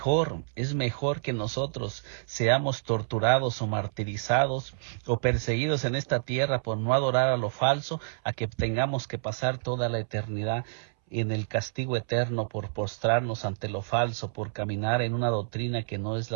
que nosotros seamos torturados o martirizados o perseguidos en esta tierra por no adorar a lo falso, a que tengamos que pasar toda la eternidad en el castigo eterno por postrarnos ante lo falso, por caminar en una doctrina que no es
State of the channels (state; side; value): silent; left; 59 dB below the other